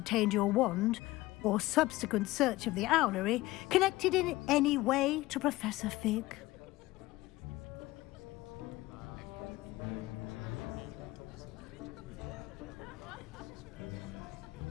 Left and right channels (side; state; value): right; quieter; 18.5 dB